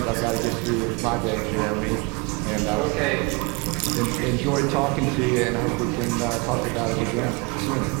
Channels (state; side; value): quieter; left; 28.6 dB